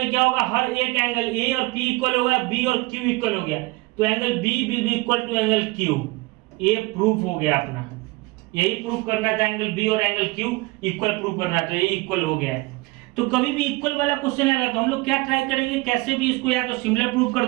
क्या होगा, हर एक एंगल A और P इक्वल होगा, B और Q इक्वल हो गया, तो angle B will be equal to angle Q। ये प्रूफ हो गया अपना, यही प्रूफ करना था, एंगल B और एंगल Q इक्वल प्रूफ करना था, ये इक्वल हो गया है। तो कभी भी इक्वल वाला क्वेश्चन आएगा तो हम लोग क्या ट्राई करेंगे, कैसे भी इसको या तो सिमिलर प्रूफ कर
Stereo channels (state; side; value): quieter; left; 22.9 dB